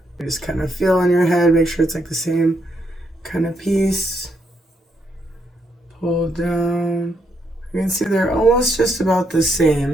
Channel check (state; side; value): normal; both; correlation 0.77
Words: Just kind of feel on your head, make sure it's like the same kind of piece. Pull down. You can see they're almost just about the